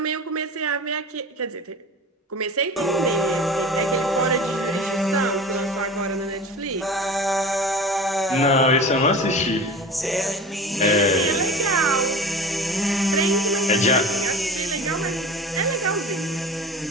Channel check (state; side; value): normal; both; correlation 0.36